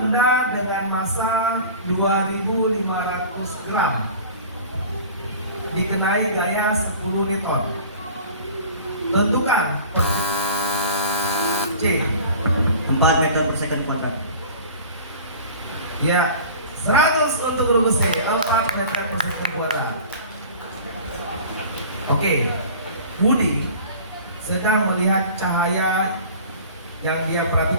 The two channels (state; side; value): inverted; both; correlation -0.41